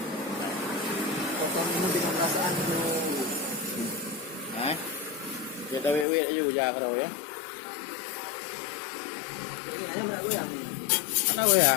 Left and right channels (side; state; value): right; drops out; at 6.1 s